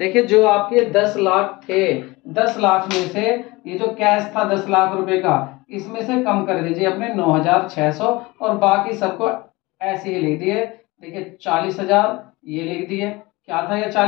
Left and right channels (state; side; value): quieter; right; 22.4 dB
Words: जो आपके 10 लाख थे, 10 लाख में से ये जो कैश था 10 लाख रुपए का, इसमें से कम कर दीजिए अपने 9,600, और बाकी सबको ऐसे ही लिख दिए। देखिए 40,000 ये लिख दिए, क्या था ये,